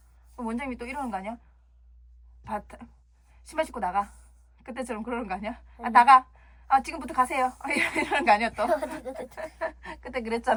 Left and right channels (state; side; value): identical; both; correlation 1.00